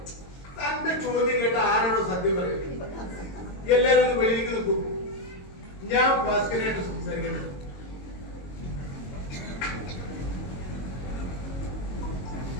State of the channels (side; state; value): right; late; 22 ms